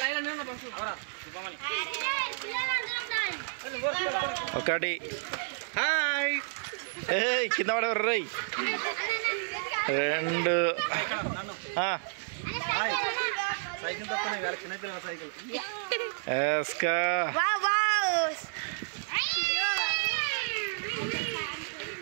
ఒకటి కింద పడేవారు రై. రెండు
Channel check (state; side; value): silent; left; digital silence